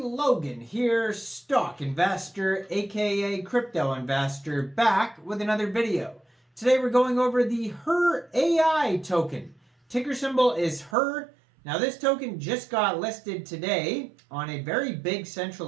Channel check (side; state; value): left; drops out; at 11.0 s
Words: here, stock investor aka crypto investor, back with another video. Today we're going over the Her.AI token. Ticker symbol is Her. Now this token just got listed today on a very big